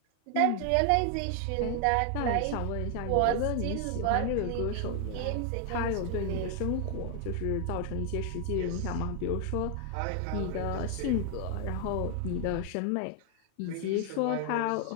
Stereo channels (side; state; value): both; different; correlation 0.00